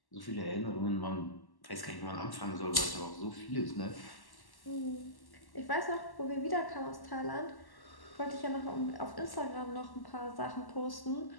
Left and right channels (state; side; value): late; right; 1.1 ms